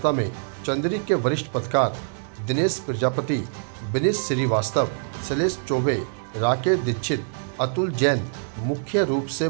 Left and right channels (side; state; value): left; silent; digital silence